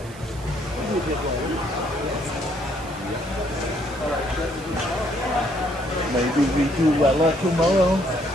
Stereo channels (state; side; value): noise; right; hiss, 21 dB below the sound